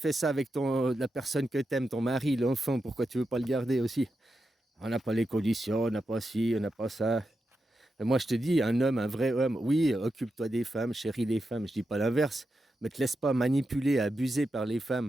ça avec la personne que tu aimes, ton mari, l'enfant, pourquoi tu ne veux pas le garder aussi? On n'a pas les conditions, on n'a pas ci, on n'a pas ça. Et moi, je te dis, un homme, un vrai homme, oui, occupe-toi des femmes, chéris les femmes, je ne dis pas l'inverse, mais te laisse pas manipuler, abuser par les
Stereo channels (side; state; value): both; normal; correlation 0.88